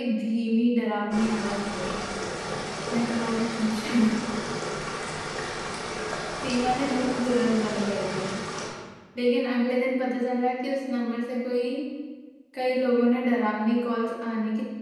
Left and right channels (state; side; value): identical; both; correlation 1.00